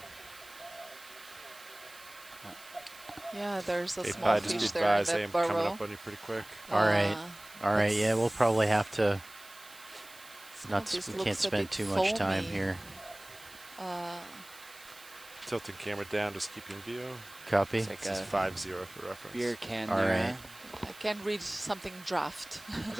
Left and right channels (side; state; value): right; noise; hiss, 20 dB below the sound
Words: Yeah, there's a Hey, small just be fish there in advised, I that am coming burrow. up on you pretty quick. All right. All right. Yeah, we'll probably have to. This We looks can't a spend bit too much time foamy. here. Tilting camera down, just keep you in view. Copy. It's like This is a 5-0 for reference. beer can All there. right. I can read something draft. I